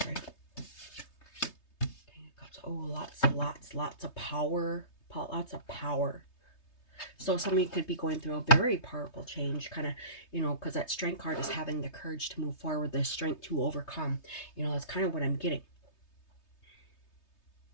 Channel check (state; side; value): late; right; 3.3 ms